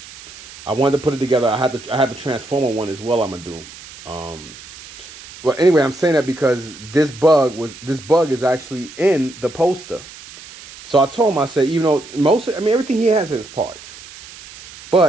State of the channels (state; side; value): noise; right; hiss, 18 dB below the sound